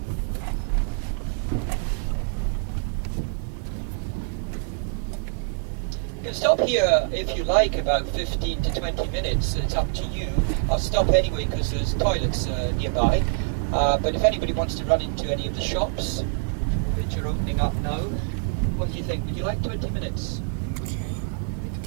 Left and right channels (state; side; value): silent; left; 61 dB below the other